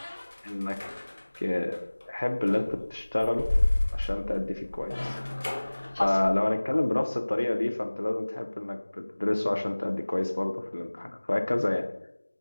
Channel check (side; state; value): both; inverted; correlation -1.00